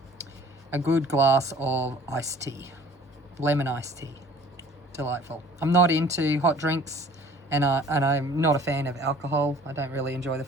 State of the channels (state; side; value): normal; both; correlation 0.51